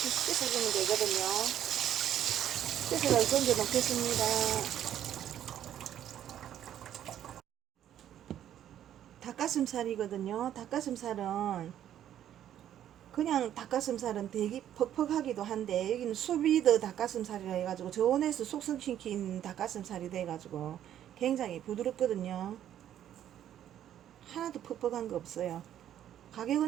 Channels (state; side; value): quieter; left; 10.9 dB